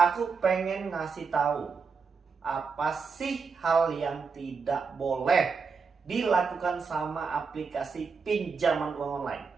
pengen ngasih tahu apa sih hal yang tidak boleh dilakukan sama aplikasi pinjaman uang online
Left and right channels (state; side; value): quieter; left; 5.2 dB